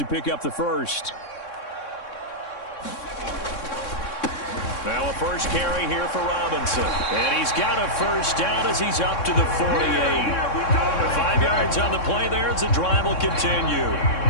pick up the first. Now a first carry here for Robinson. And he's got a first down as he's up to the 48. The 5 yards on the play there as the drive will continue.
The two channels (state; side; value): late; right; 3.6 ms